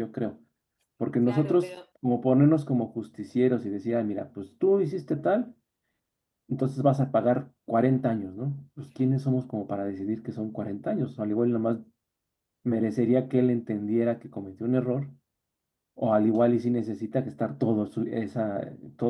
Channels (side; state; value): both; identical; correlation 1.00